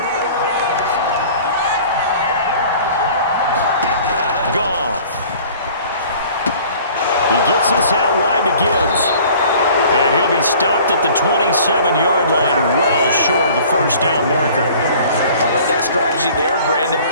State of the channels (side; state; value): both; inverted; correlation -0.49